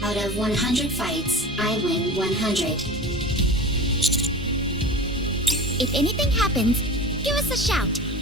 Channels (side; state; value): both; normal; correlation 0.33